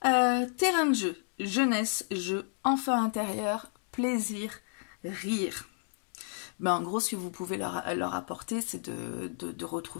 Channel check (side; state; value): right; silent; 57 dB below the other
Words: Terrain de jeu, jeunesse, jeu, enfant intérieur, plaisir, rire. Ben, en gros, ce que vous pouvez leur apporter, c'est de